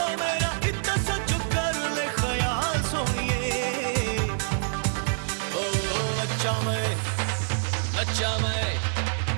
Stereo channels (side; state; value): left; silent; digital silence